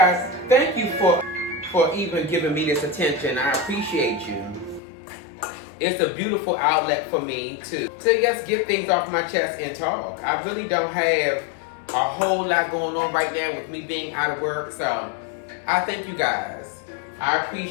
thank you for even giving me this attention. I appreciate you. It's a beautiful outlet for me to just get things off my chest and talk. I really don't have a whole lot going on right now with me being out of work. So I thank you guys. I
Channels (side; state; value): right; drops out; at 4.8 s